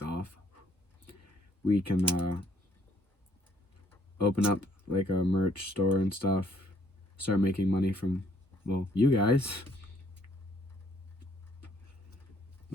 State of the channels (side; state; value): both; normal; correlation 0.66